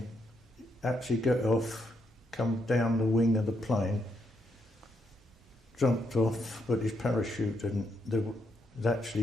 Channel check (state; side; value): normal; both; correlation 0.78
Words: actually get off, come down the wing of the plane, jumped off, but his parachute didn't. It was